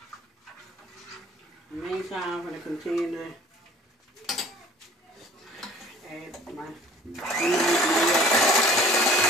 In the meantime, I'm gonna continue to add my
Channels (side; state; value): both; normal; correlation 0.50